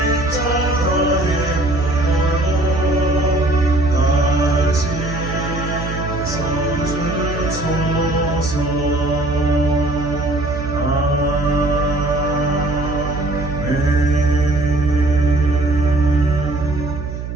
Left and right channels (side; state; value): right; noise; hum, 7 dB below the sound